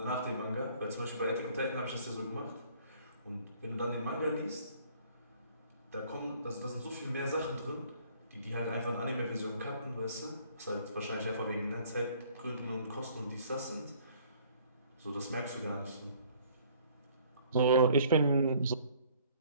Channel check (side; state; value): both; inverted; correlation -0.58